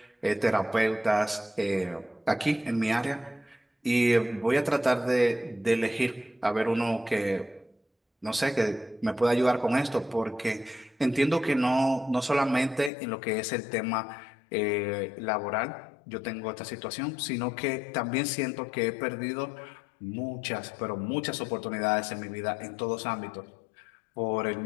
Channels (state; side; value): drops out; right; at 12.9 s